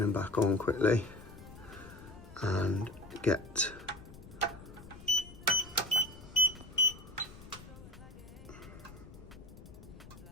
him back on quickly and get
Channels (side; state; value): left; noise; rumble, 17 dB below the sound